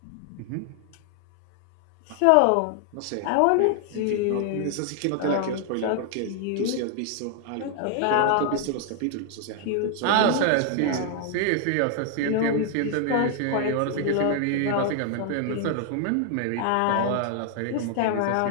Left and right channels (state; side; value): different; both; correlation 0.00